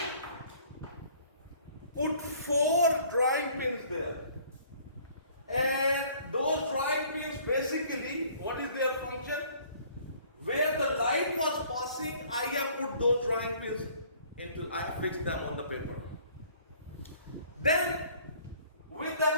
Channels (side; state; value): both; inverted; correlation -0.56